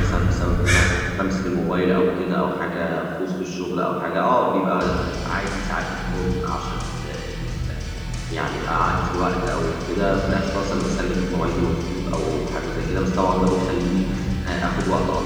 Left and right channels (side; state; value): both; identical; correlation 1.00